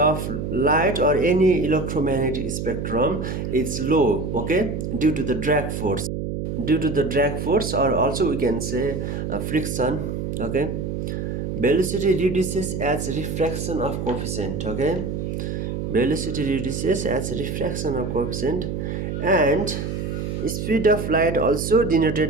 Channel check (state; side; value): noise; right; hum, 3 dB below the sound